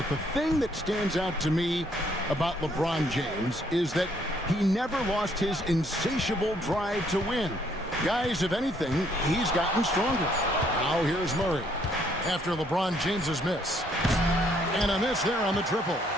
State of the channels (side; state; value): both; normal; correlation 0.67